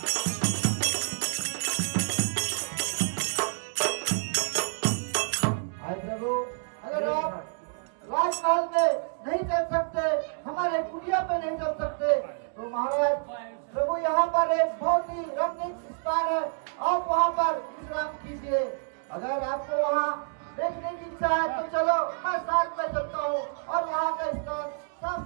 अगर आप राजकाल में नहीं चल सकते, हमारे कुटिया पे नहीं चल सकते, तो महाराज प्रभु यहाँ पर एक बहुत ही रमणीक स्थान है, आप वहाँ पर विश्राम कीजिए। अगर आपको वहाँ देखने की इच्छा है तो चलो, मैं साथ में चलता हूँ और वहाँ का स्थान साफ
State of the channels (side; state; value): left; silent; digital silence